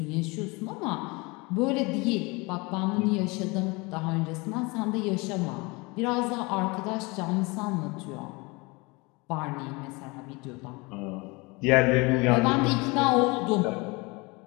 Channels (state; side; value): quieter; right; 26.2 dB